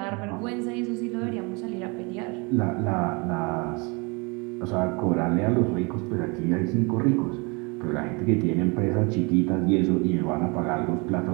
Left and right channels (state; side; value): quieter; left; 29.9 dB